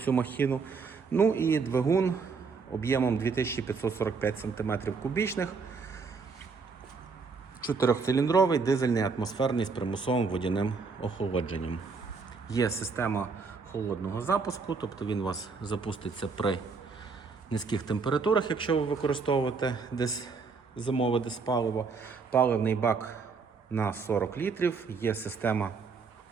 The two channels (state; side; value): quieter; left; 4.9 dB